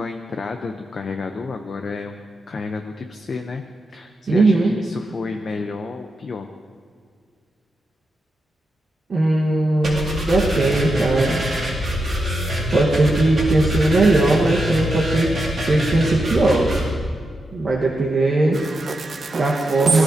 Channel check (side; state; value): both; normal; correlation 0.86